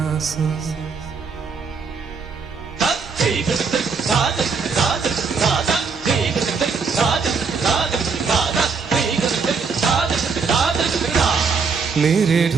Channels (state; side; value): quieter; left; 5.2 dB